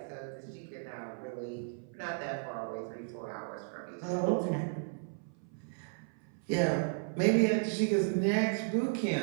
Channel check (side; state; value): left; silent; 55 dB below the other